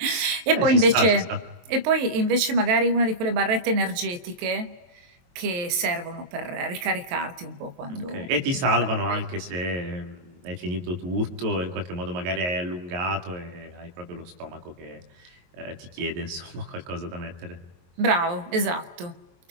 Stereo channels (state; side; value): late; left; 22 ms